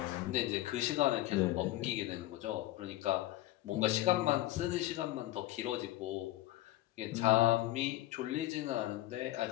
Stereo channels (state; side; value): quieter; right; 16.1 dB